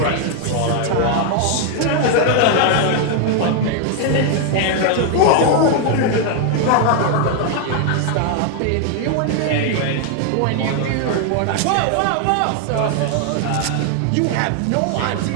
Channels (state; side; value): different; both; correlation 0.00